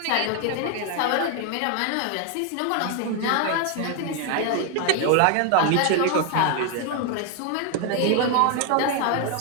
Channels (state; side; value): different; both; correlation 0.01